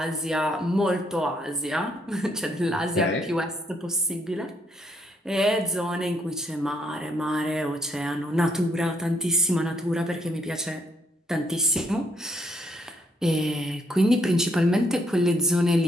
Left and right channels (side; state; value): both; normal; correlation 0.69